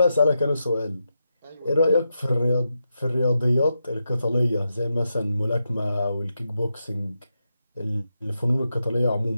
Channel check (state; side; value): inverted; both; correlation -0.86